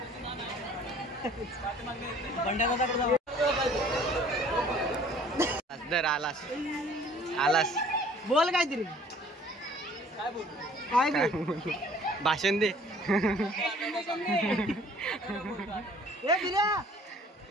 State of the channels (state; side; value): normal; both; correlation 0.53